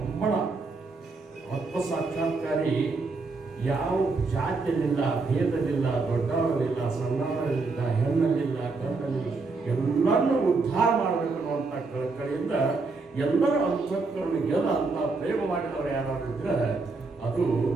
ಆತ್ಮ ಸಾಕ್ಷಾತ್ಕಾರಿ. ಯಾವ ಜಾತಿಯಲ್ಲಿಲ್ಲ, ಭೇದಲಿಲ್ಲ, ದೊಡ್ಡವರಲ್ಲಿಲ್ಲ, ಸಣ್ಣವರಲ್ಲಿಲ್ಲ, ಹೆಣ್ಣಲ್ಲಿಲ್ಲ, ಗಂಡಲ್ಲಿಲ್ಲ, ಎಲ್ಲರನ್ನೂ ಉದ್ಧಾರ ಮಾಡಬೇಕು ಅನ್ನುವಂಥ ಕಳಕಳಿಯಿಂದ ಎಲ್ಲರ ಅಂತಃಕರಣಗೆಲ್ಲ ಅಂತ ಪ್ರೇಮ ಮಾಡಿದವರು ಯಾರು ಇದ್ರೆ ಅದು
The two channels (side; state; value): left; quieter; 3.9 dB